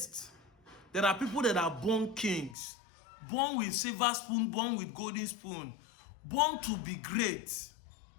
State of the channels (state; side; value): drops out; right; at 2.6 s